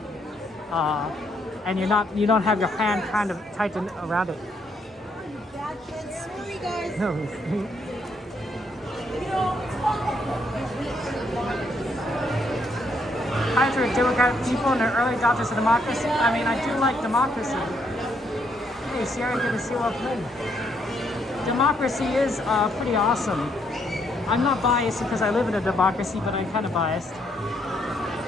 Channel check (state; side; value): normal; both; correlation 0.73